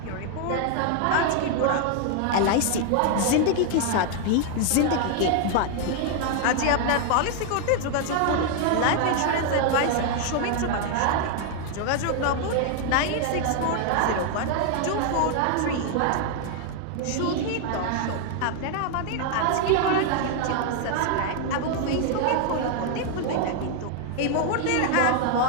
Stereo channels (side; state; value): both; different; correlation 0.00